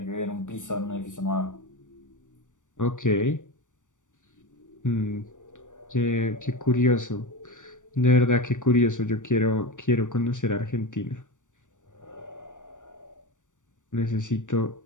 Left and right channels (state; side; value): late; right; 0.86 ms